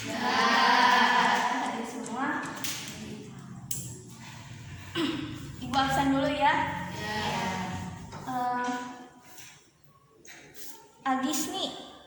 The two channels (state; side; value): identical; both; correlation 1.00